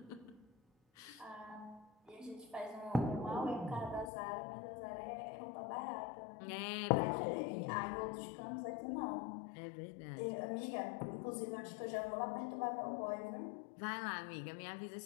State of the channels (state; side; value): drops out; right; at 4.1 s